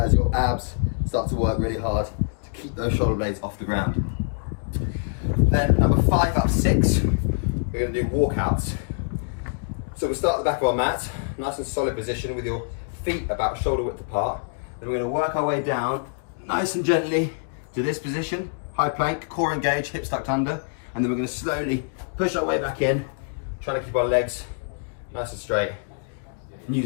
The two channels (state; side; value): silent; right; digital silence